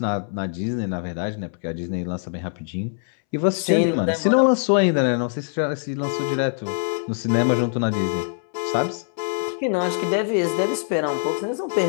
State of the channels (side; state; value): right; silent; 63 dB below the other